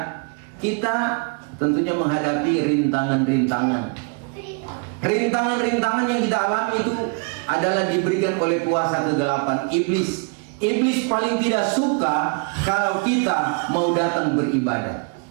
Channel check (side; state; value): left; quieter; 35.7 dB